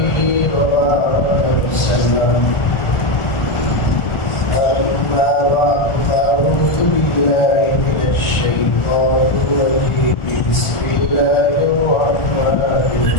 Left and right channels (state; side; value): late; right; 1.4 ms